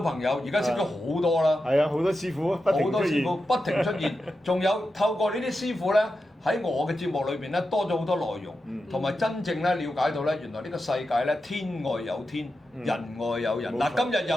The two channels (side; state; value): both; normal; correlation 0.90